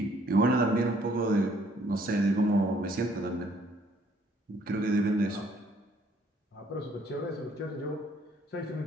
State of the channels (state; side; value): normal; both; correlation 0.63